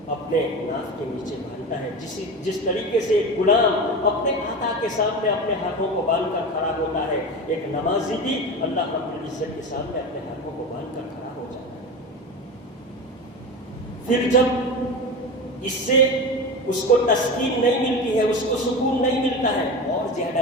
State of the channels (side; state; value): both; normal; correlation 0.26